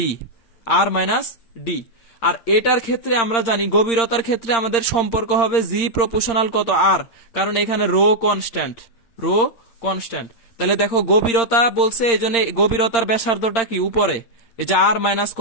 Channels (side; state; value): right; late; 8.7 ms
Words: আর মাইনাস ডি। আর এটার ক্ষেত্রে আমরা জানি গভীরতার ক্ষেত্রে আমাদের সম্পর্ক হবে জি প্রপোর্শনাল কত, আর, কারণ এখানে রো কনস্ট্যান্ট, রো কনস্ট্যান্ট। তাহলে দেখো গভীরতা বলছে, এই জন্য গভীরতার ব্যাসার্ধটা কি, উপরে, এই যে আর মাইনাস